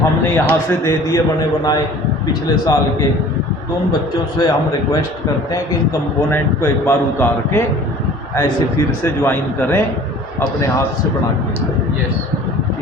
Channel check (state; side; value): normal; both; correlation 0.47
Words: यहाँ से दे दिए बने बनाए पिछले साल के, तो उन बच्चों से हम रिक्वेस्ट करते हैं कि इन कंपोनेंट को एक बार उतार के ऐसे फिर से ज्वाइन करें, अपने हाथ से बना के। यस